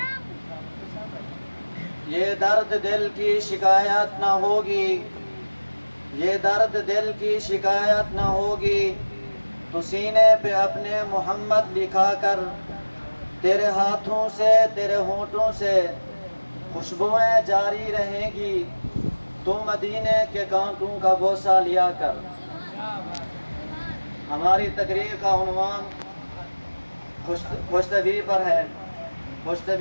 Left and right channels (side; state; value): both; inverted; correlation -1.00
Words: یہ درد دل کی شکایت نہ ہوگی، یہ درد دل کی شکایت نہ ہوگی، تو سینے پہ اپنے محمد لکھا کر تیرے ہاتھوں سے تیرے ہونٹوں سے خوشبوئیں جاری رہیں گی، تو مدینے کے کانٹوں کا بوسہ لیا کر۔ ہماری تقریر کا عنوان خوش طبعی پر ہے۔ خوش